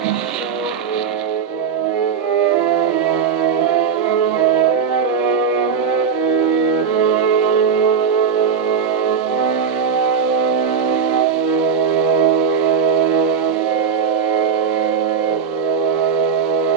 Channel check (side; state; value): left; quieter; 6.6 dB